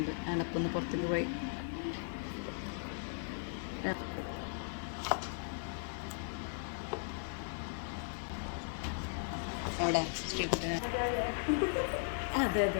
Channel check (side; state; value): right; silent; digital silence